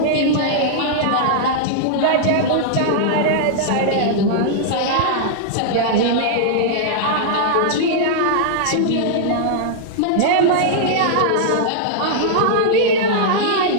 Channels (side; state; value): both; different; correlation -0.01